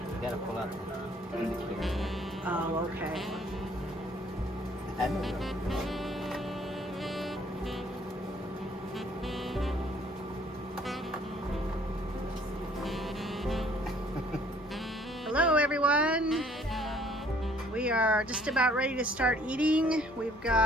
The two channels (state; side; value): normal; both; correlation 0.60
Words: gotta pull out the indicator. Oh, okay. I don't know. Hello, everyone. We are just about ready to start eating. We've